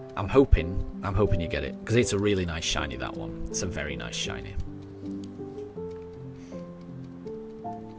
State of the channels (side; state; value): both; identical; correlation 1.00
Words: hoping you get it, because it's a really nice shiny, that one. It's a very nice shiny.